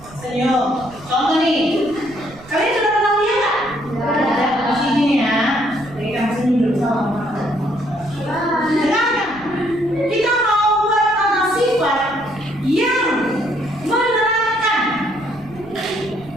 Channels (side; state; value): right; noise; rumble, 21 dB below the sound